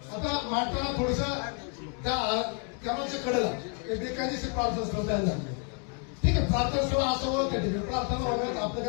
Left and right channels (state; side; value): quieter; right; 39.0 dB